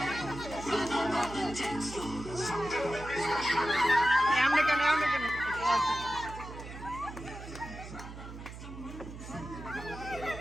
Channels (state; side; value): noise; right; hum, 12 dB below the sound